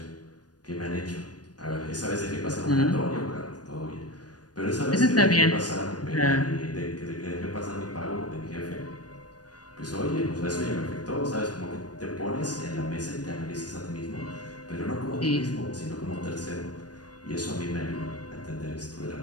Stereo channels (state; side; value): late; right; 0.69 ms